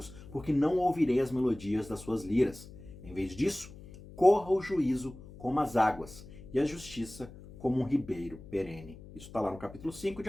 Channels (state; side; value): noise; left; hum, 17 dB below the sound